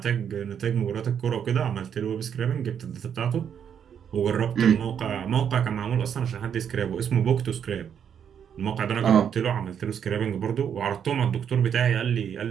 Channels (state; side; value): quieter; left; 8.2 dB